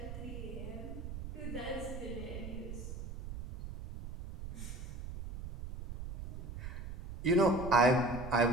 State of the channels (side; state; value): right; noise; rumble, 8 dB below the sound